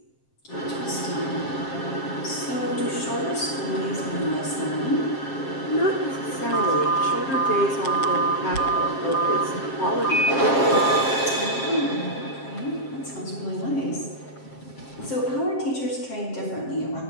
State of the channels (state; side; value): late; right; 7.5 ms